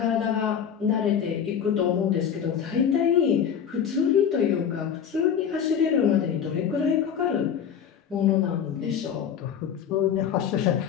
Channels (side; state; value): right; quieter; 8.1 dB